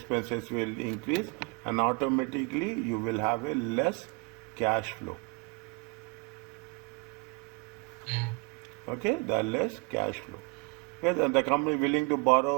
will increase, and automatically you will have a less cash flow. Okay, the less cash flow. Yes, and the company willing to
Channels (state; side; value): quieter; left; 28.9 dB